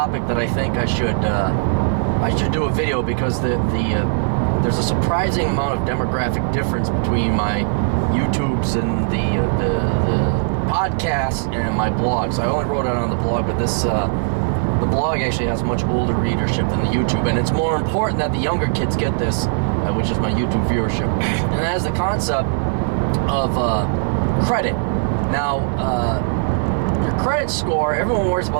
that I think I should do a video, because there's a surprising amount of demographic difference between my YouTubes and the podcasts and my blogs. I only wrote it on the blog, but the blog actually has much older readership than the YouTube, and it's more important that the younger kids get this, which is my YouTube viewership. And it has the concept of credit. Now, your credit score, everyone worries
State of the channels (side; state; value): left; silent; 66 dB below the other